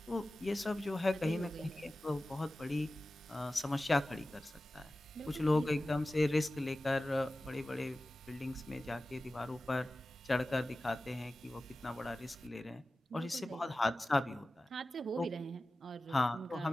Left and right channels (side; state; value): both; normal; correlation 0.96